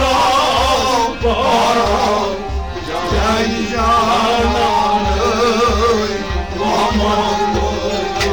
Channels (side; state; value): both; identical; correlation 1.00